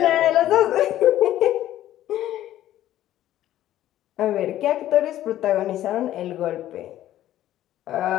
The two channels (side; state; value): right; quieter; 13.1 dB